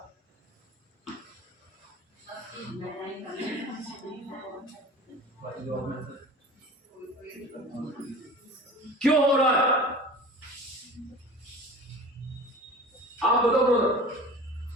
क्यों हो रहा है? आप बताओ ब्रदर।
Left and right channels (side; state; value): both; normal; correlation 0.39